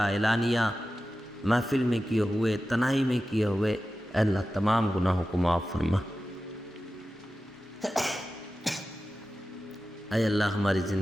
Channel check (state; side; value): normal; both; correlation 0.94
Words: محفل میں کیے ہوئے، تنہائی میں کیے ہوئے، اے اللہ تمام گناہوں کو معاف فرما۔ اے اللہ ہماری